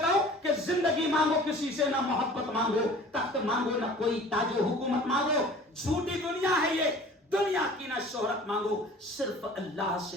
हूं कि जिंदगी मांगो किसी से, ना मोहब्बत मांगो, तख्त मांगो, ना कोई ताजो हुकूमत मांगो। झूठी दुनिया है ये, दुनिया की ना शोहरत मांगो, सिर्फ अल्लाह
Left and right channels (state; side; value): normal; both; correlation 0.46